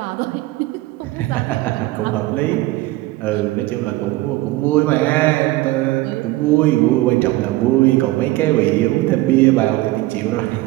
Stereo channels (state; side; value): quieter; left; 18.3 dB